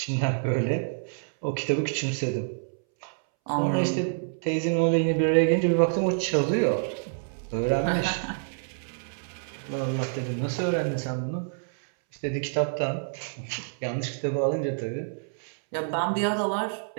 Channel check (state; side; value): silent; left; 60 dB below the other